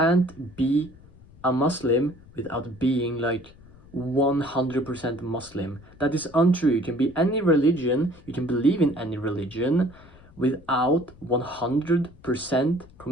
be a Muslim without being like 100% Muslim. That is untrue. You can be any religion, you can believe in any religion without 100%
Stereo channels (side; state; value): left; noise; rumble, 23 dB below the sound